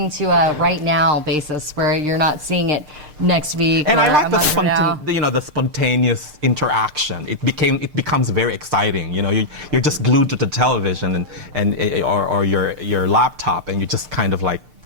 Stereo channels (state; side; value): late; left; 6.6 ms